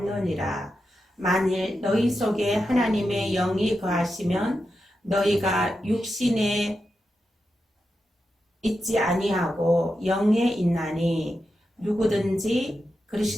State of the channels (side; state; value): both; normal; correlation 0.88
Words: 만일 너희 속에 하나님의 영이 거하시면 너희가 육신에 있지 아니하고 영에 있나니 누구든지